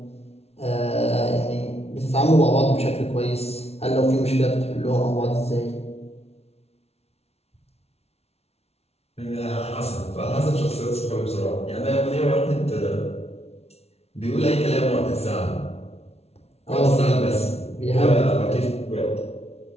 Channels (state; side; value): late; right; 0.31 ms